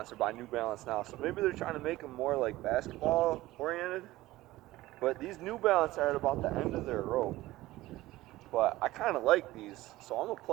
by New Balance now, so maybe they're trying to make them more like basketball oriented. But these New Balance are at about the end of their rope. But I kind of like these, so I'm gonna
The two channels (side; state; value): left; quieter; 17.4 dB